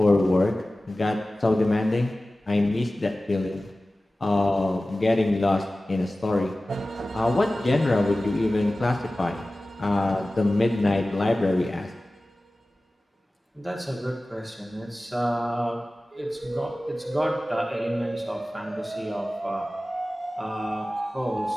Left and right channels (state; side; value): normal; both; correlation 0.96